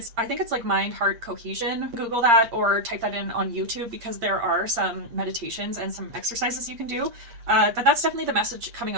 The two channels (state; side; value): late; left; 8.6 ms